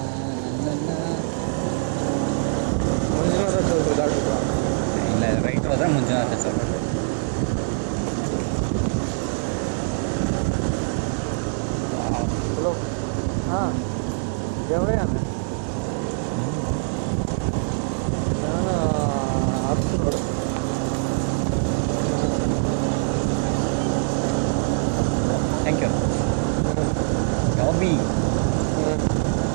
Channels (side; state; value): left; silent; 63 dB below the other